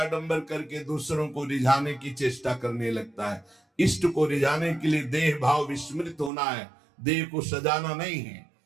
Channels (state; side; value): drops out; left; at 6.3 s